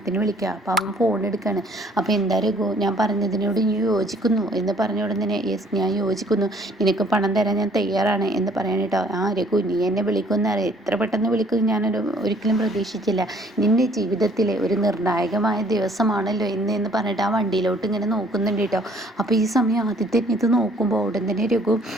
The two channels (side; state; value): both; normal; correlation 0.59